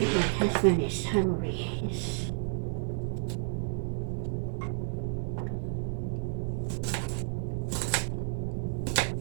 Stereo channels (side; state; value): left; silent; digital silence